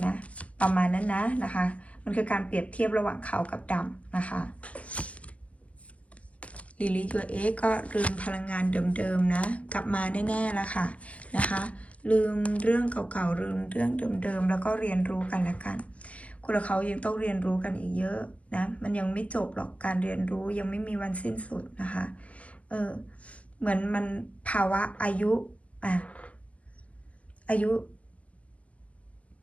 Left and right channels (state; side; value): late; right; 0.065 ms